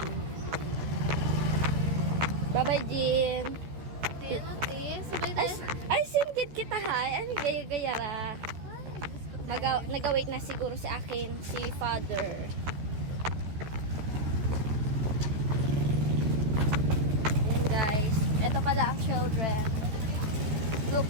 Bye-bye, Jean. Sabay tayo. Ay, singkit kita, ha. Ay, gaya-gaya ra. Nag-wait na siguro si akin, si Father. Yun, guys. Ito pala ang children.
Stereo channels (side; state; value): left; late; 13 ms